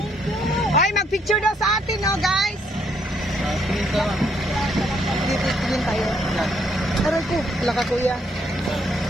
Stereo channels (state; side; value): normal; both; correlation 0.71